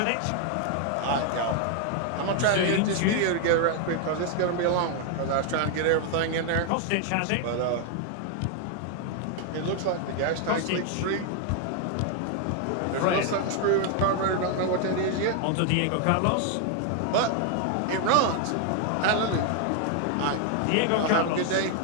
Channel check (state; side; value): different; both; correlation 0.00